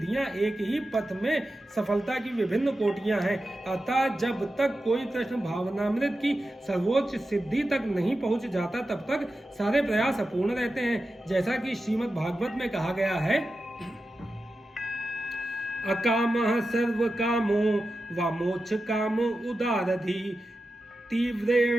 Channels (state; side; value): normal; both; correlation 0.92